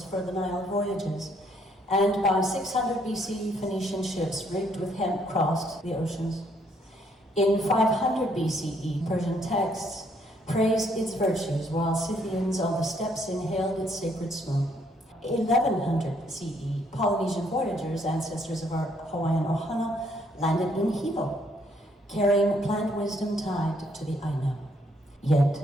for the Nile voyages, and by 600 BCE, Phoenician ships rigged with hemp crossed the oceans. In 500 BCE, Persian texts praised its virtues, while Scythians on the steppes inhaled its sacred smoke. 1100 CE, Polynesian voyagers, ancestors of our Hawaiian ohana, landed in Hilo, carrying plant wisdom tied to the Aina. Yet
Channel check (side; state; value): both; normal; correlation 0.69